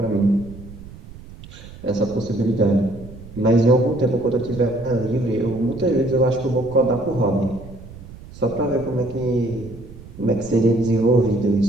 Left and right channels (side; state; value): right; noise; rumble, 16 dB below the sound